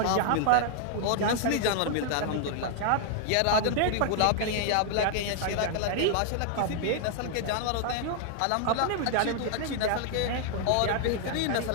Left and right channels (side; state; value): both; different; correlation 0.00